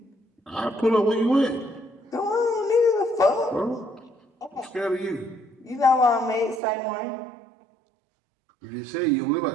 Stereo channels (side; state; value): left; drops out; at 6.6 s